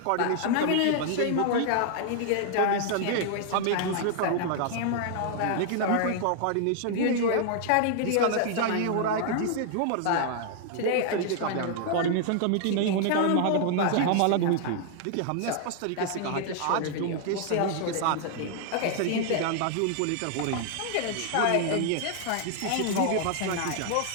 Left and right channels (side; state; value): both; different; correlation 0.00